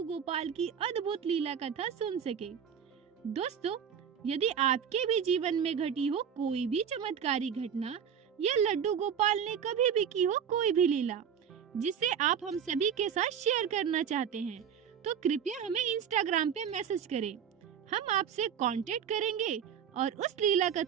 गोपाल की अद्भुत लीला कथा सुन सके। दोस्तों, यदि आपके भी जीवन में घटी हो कोई भी चमत्कारी घटना या लड्डू गोपाल ने कभी भी की हो कोई भी लीला जिसे आप हम सभी के साथ शेयर करना चाहते हैं, तो कृपया हमें इंस्टाग्राम पे मैसेज करें। हम आपसे कांटेक्ट करेंगे और उस लीला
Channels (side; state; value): left; quieter; 8.0 dB